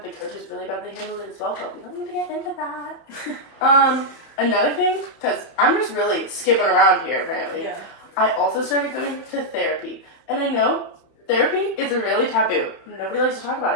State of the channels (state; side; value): late; right; 31 ms